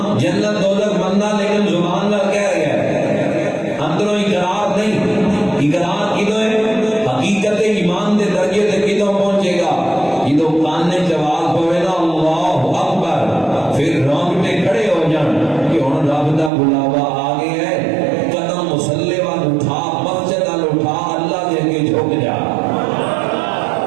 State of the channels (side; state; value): left; drops out; at 16.5 s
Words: جنت دوزخ مندا لیکن زبان نال کہہ رہا ہے اندروں اقرار نہیں اقرار کدوں ہے حقیقت ایمان دے درجے تے کدوں پہنچے گا جدوں کان نے جواب پوے نا اللہ اکبر پھر رونگٹے کھڑے ہو جان کہ ہن رب دا بلاوا آ گیا ہے قدم مصلی وال اٹھا مسجد وال اٹھا اللہ دے اگے جھک جا